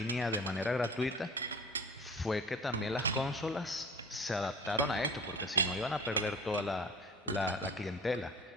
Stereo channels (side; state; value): both; normal; correlation 0.42